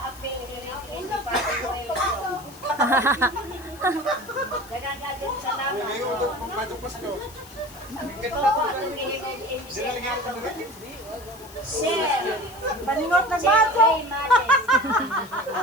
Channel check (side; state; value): left; noise; hiss, 21 dB below the sound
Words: apel, hindi pa si Boy. Dagang agad salamat. Ngayon ito kung Batang Pasko. Ito po atong ihigog Dili lagi ka dili. Share. Paningot na Jeffrey Males.